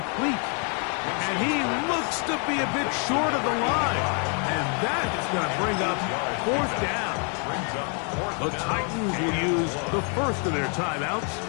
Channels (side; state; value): right; quieter; 39.5 dB